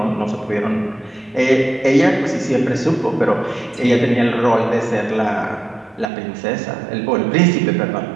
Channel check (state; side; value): drops out; left; at 6.1 s